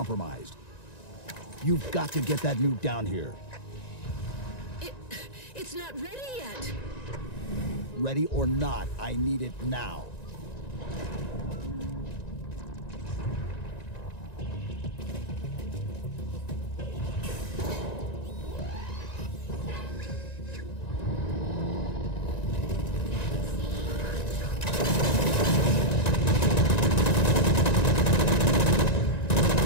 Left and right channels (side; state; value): right; late; 1.9 ms